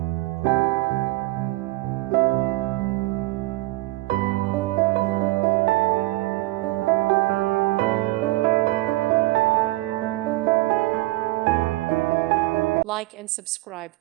Like and subscribe,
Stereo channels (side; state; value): left; quieter; 20.0 dB